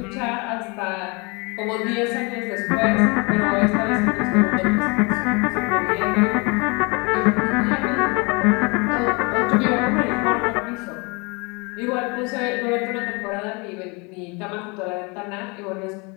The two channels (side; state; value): right; quieter; 29.2 dB